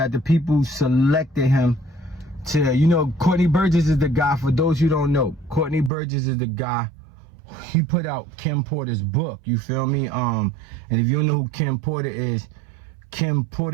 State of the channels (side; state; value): left; drops out; at 5.9 s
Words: the people selected him to, you know, Courtney Burgess is the guy, for those who don't know, Courtney Burgess is the guy, he put out Kim Porter's book, you feel me? And if you don't know who Kim Porter is